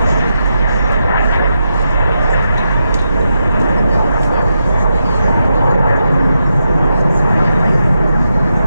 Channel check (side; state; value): both; inverted; correlation -0.85